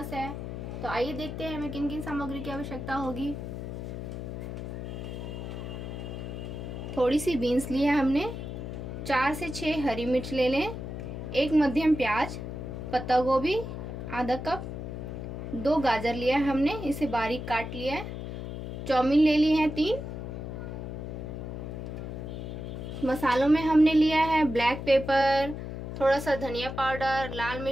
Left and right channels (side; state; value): left; noise; hum, 7 dB below the sound